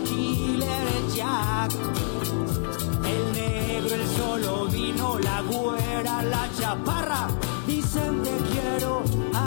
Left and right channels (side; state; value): right; silent; digital silence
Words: Killer, el Jack. El negro, el solo vino, la güera, la chaparra, dicen te quiero